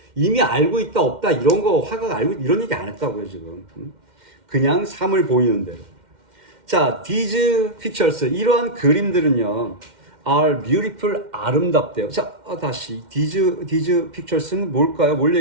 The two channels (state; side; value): late; left; 2.1 ms